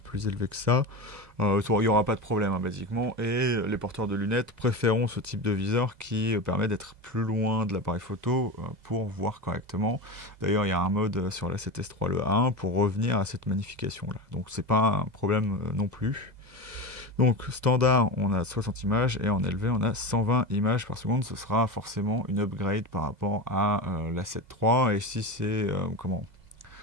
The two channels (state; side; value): late; left; 2.0 ms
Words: plus élevé que ça. Il n'y aura pas de problème, hein, basiquement. Et les porteurs de lunettes préféreront ce type de viseur qui permet d'être plus loin de l'appareil photo pour voir correctement. D'ailleurs, il y a un mode sur la 7S3, le A1, pour revenir à cette magnification-là. Donc c'est pas un problème non plus. Donc standard, on a 60 images et en élevé, on a 120 images par seconde. Ce sera forcément une upgrade par rapport à la 7.3. Et si c'est